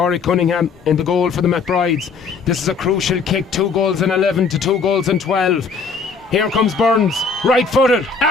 Cunningham in the goal for the McBrides. This is a crucial kick, 2 goals in 11 to 2 goals in 12. Here comes Burns, right-footed,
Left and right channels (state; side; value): quieter; right; 5.0 dB